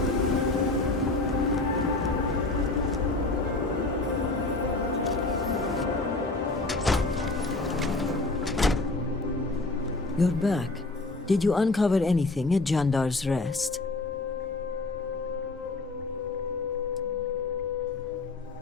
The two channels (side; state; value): right; quieter; 3.2 dB